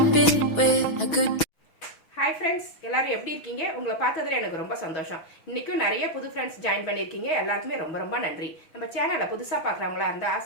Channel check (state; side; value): late; right; 6.2 ms